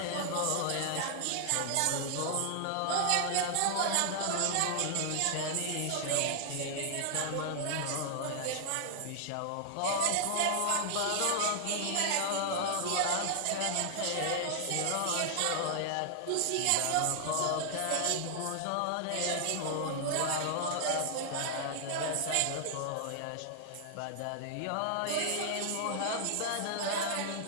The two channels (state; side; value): different; both; correlation -0.01